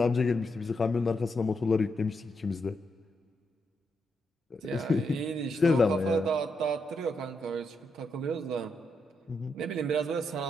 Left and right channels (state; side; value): normal; both; correlation 0.81